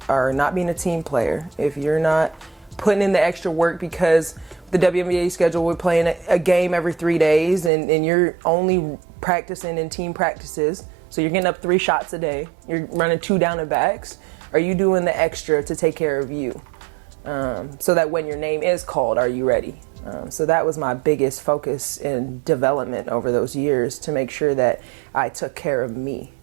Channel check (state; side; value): drops out; left; at 7.7 s